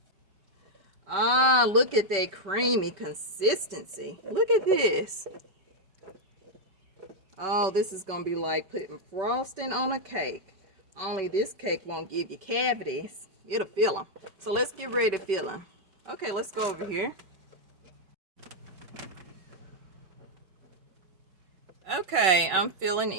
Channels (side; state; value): left; late; 5.2 ms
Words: Ah, look at that creamy consistency. Look at this. Oh, this is going to be like putting frosting on a cake. Only this cake won't give you cavities. It'll fill them. So let's get ready to fill them. Okay, let's go over here. Okay, I'm filling